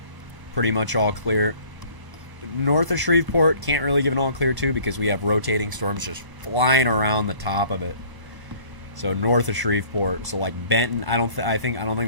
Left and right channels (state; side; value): late; left; 1.0 ms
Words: pretty much all clear. North of Shreveport, can't really give an all clear to, because we have rotating storms just flying around the top of it. So north of Shreveport, so like Benton, I don't think